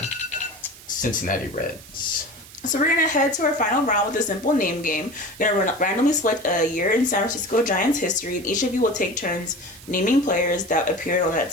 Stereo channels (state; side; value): noise; right; hiss, 19 dB below the sound